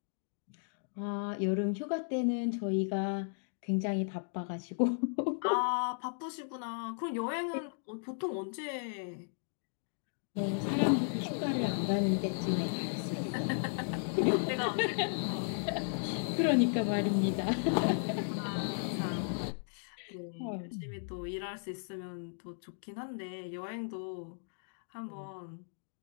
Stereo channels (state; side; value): silent; right; digital silence